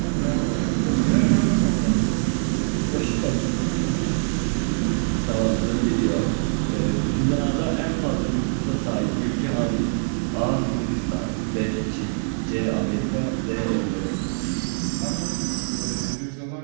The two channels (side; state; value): left; silent; 63 dB below the other